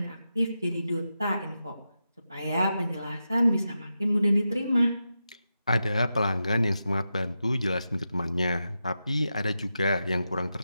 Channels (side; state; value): both; inverted; correlation -0.89